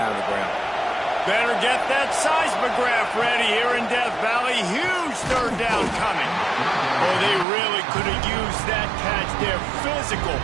on the ground. Better get that seismograph ready here in Death Valley. Huge third down coming. Oh, they really could have used that catch there. Physical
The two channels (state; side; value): drops out; left; at 7.5 s